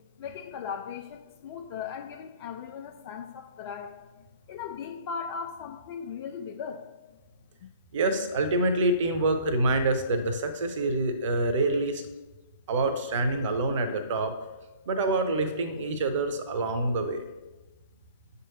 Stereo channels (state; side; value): inverted; both; correlation -0.50